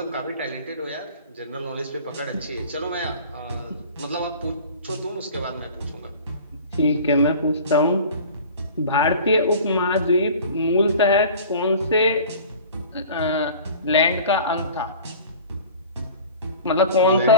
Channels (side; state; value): both; inverted; correlation -0.41